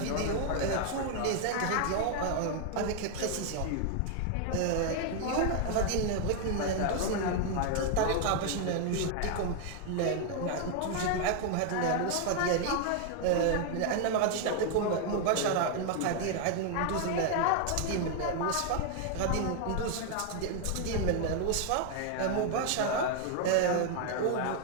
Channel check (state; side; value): different; both; correlation 0.00